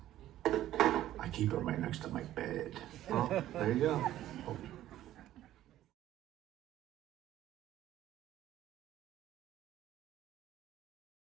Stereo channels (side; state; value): left; quieter; 13.3 dB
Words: I keep them right next to my bed. Well, there you go.